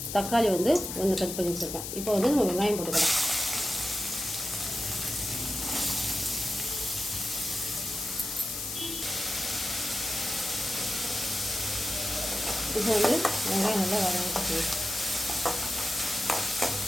தக்காளி வந்து 1 கட் பண்ணி வச்சுருக்கேன். இப்போ வந்து நம்ம வெங்காயம் போட்டுக்கலாம். இப்போ வந்து வெங்காயம் நல்லா வதங்கிட்டு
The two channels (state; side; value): noise; left; hiss, 6 dB below the sound